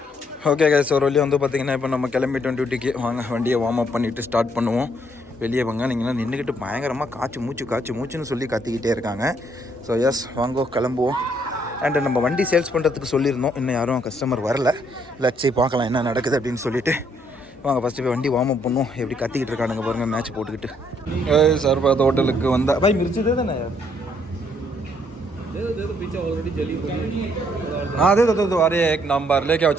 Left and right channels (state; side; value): normal; both; correlation 0.69